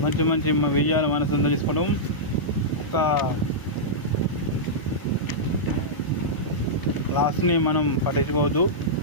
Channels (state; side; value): late; right; 1.0 ms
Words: మంచి మంచి విజయాలు మన సొంతం చేసుకోవడం. ఒక లాస్ట్ని మనం పట్టించుకోవద్దు.